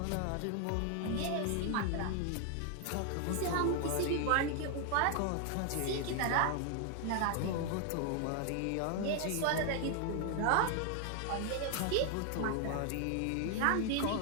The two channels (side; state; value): both; different; correlation 0.00